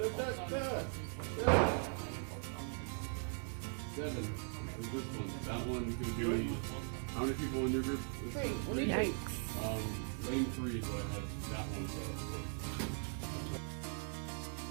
Seven. Is this one? That one's gonna be how many people in your group? Three. Yikes. Lane 3 is what I have. That one.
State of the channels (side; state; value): left; silent; 51 dB below the other